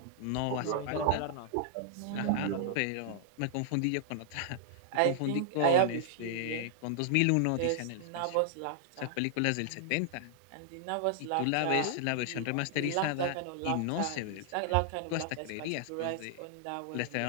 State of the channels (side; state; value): both; different; correlation -0.01